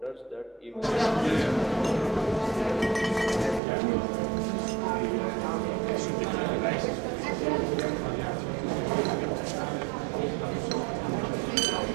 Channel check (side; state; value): left; drops out; at 3.6 s